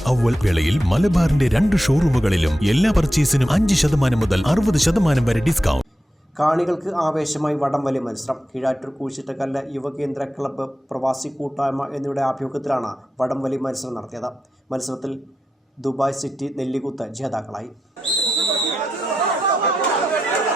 അവ്വൽ വേളയിൽ മലബാറിന്റെ 2 ഷോറൂമുകളിലും എല്ലാ പർച്ചേസിനും 5% മുതൽ 60% വരെ ഡിസ്കൗണ്ട്. കാണികൾക്ക് ആവേശമായി വടംവലി മത്സരം. കീഴാറ്റൂർ കൂച്ചിട്ടക്കല്ല് യുവകേന്ദ്ര ക്ലബ്ബ്, പ്രവാസി കൂട്ടായ്മ എന്നിവയുടെ ആഭിമുഖ്യത്തിലാണ് വടംവലി മത്സരം നടത്തിയത്. മത്സരത്തിൽ ദുബായ് സിറ്റി നെല്ലിക്കുത്ത് ജേതാക്കളായി.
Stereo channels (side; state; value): both; normal; correlation 0.88